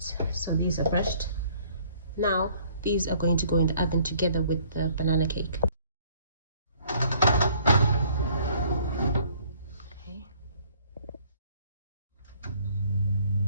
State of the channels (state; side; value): inverted; both; correlation -0.59